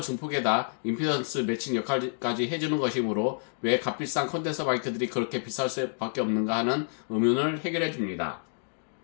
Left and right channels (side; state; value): right; silent; digital silence